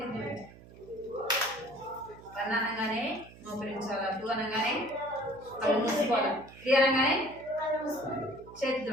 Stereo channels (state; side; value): noise; right; hum, 20 dB below the sound